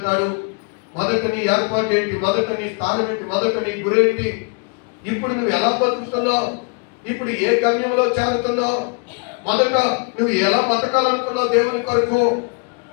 మొదట నీ ఏర్పాటు ఏంటి, మొదట నీ స్థానం ఏంటి, మొదట నీ గురేంటి, ఇప్పుడు నువ్వు ఎలా బతుకుతున్నావు, ఇప్పుడు ఏ గమ్యంలో చేరుతున్నావు, మొదట నువ్వు ఎలా బతకాలనుకున్నావు దేవుని కొరకు.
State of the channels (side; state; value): right; quieter; 35.1 dB